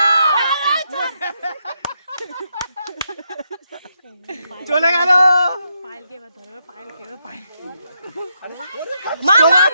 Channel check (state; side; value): inverted; both; correlation -0.80